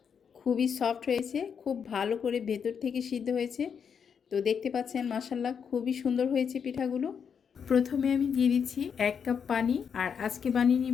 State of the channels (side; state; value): right; quieter; 7.0 dB